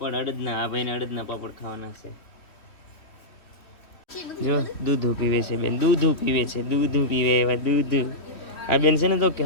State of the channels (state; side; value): late; right; 2.9 ms